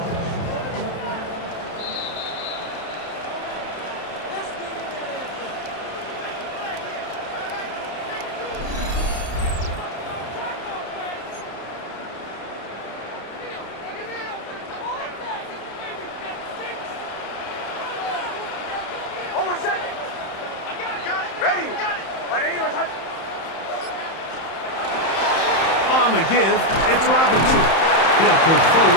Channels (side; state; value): right; late; 31 ms